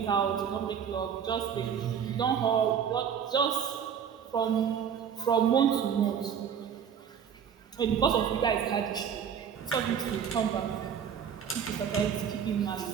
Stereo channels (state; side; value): quieter; left; 7.9 dB